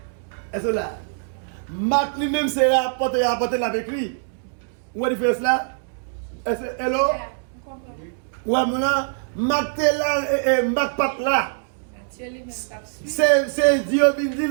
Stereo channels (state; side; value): silent; left; digital silence